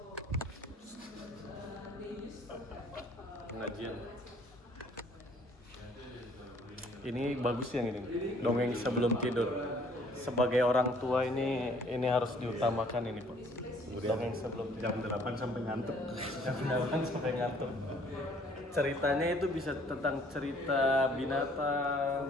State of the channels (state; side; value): normal; both; correlation 0.59